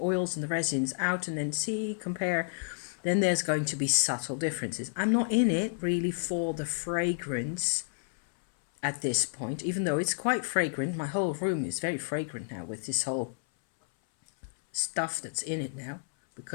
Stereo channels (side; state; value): right; silent; 57 dB below the other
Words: and the resins out and then compare. Then there's going to be subtle differences. I'm not in it really for the fragrance at this point, even though it's quite fragrant. My whole room is very fragrant now with this whole stuff that's in it now